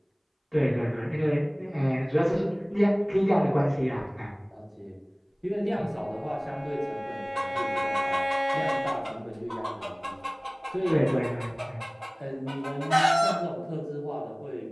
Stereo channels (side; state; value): both; identical; correlation 1.00